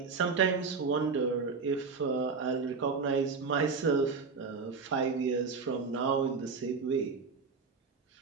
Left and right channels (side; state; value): left; quieter; 4.9 dB